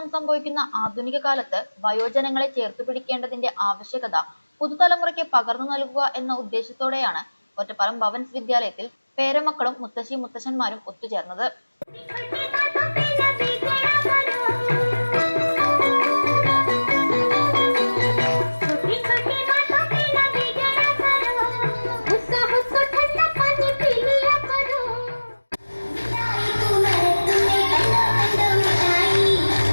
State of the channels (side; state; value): both; inverted; correlation -1.00